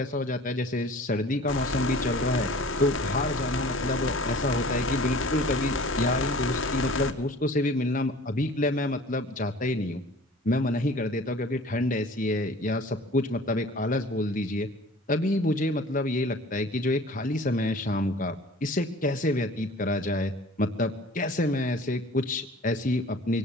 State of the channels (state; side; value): normal; both; correlation 0.46